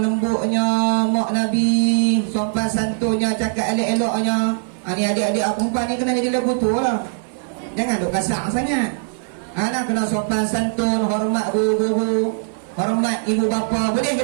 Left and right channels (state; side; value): silent; left; 59 dB below the other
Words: lembutnya mak Nabi, sopan santunnya, cakap elok-eloknya. Ni adik-adik perempuan ni kena jadi lagu tu lah. Jangan duk kasar sangat. Nak kena sopan santun, hormat guru-guru, hormat ibu bapa. Boleh ke